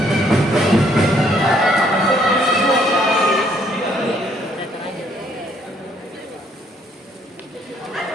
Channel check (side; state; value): both; normal; correlation 0.67